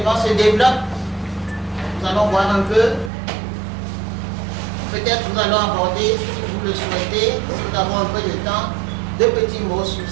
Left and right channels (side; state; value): left; drops out; at 3.1 s